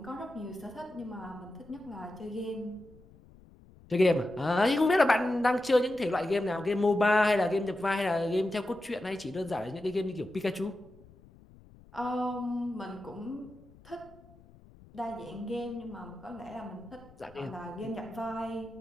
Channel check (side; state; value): left; noise; rumble, 24 dB below the sound